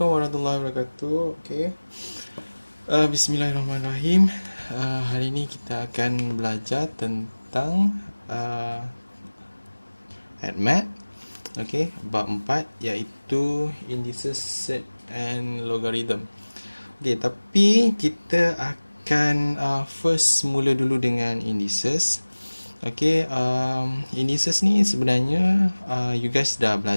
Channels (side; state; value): both; inverted; correlation -1.00